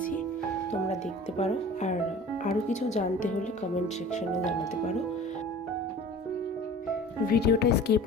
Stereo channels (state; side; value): normal; both; correlation 0.43